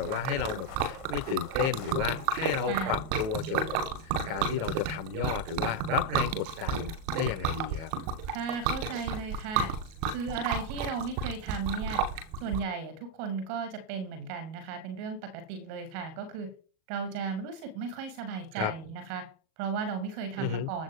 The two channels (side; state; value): left; late; 38 ms